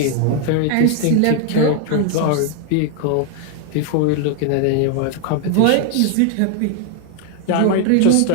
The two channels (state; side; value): different; both; correlation 0.00